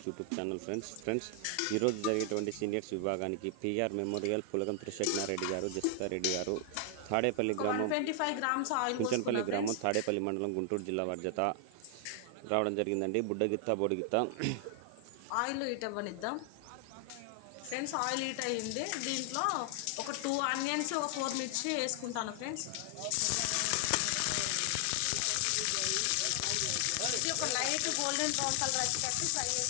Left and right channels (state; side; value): different; both; correlation 0.00